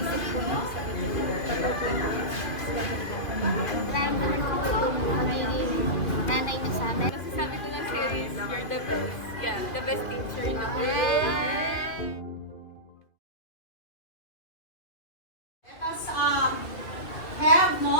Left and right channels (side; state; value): right; late; 2.5 ms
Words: po niyo sa nararamdaman ko po yung magiging nanay niyo sa amin. Kasi sabi ko lang series, you're the best. Yeah, the best teacher na. Let us have